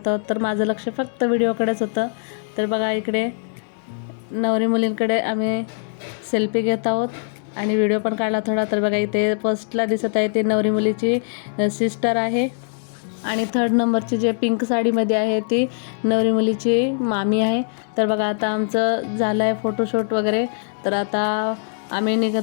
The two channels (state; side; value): silent; right; digital silence